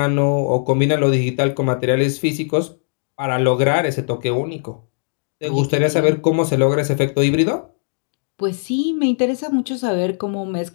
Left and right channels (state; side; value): silent; right; digital silence